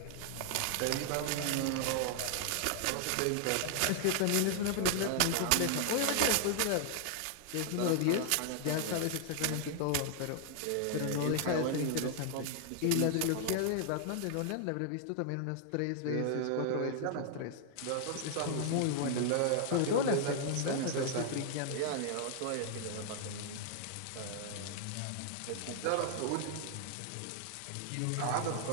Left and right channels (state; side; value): different; both; correlation 0.00